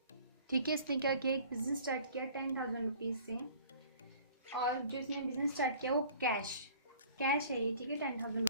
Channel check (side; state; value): both; inverted; correlation -0.50